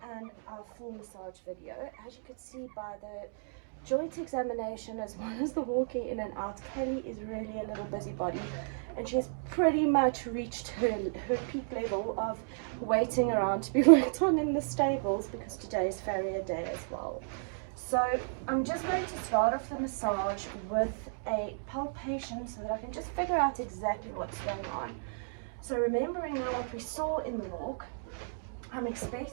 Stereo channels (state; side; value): silent; left; digital silence